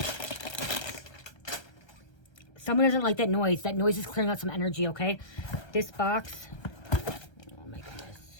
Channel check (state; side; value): late; right; 1.3 ms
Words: Someone doesn't like that noise. That noise is clearing out some energy, okay? This box. Oh my